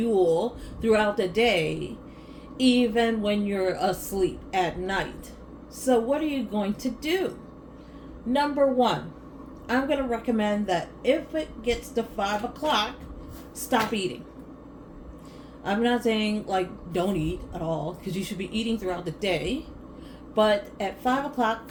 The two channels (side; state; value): both; identical; correlation 1.00